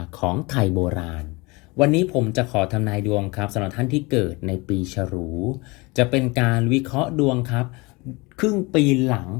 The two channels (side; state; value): right; quieter; 25.4 dB